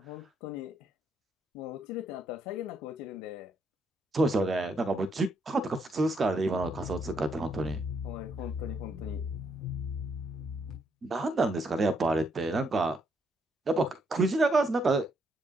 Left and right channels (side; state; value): both; normal; correlation 0.74